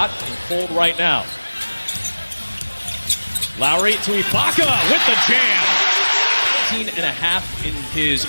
and cold right now. Lowry to Ibaka with the jam. 18.5 in his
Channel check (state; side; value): inverted; both; correlation -1.00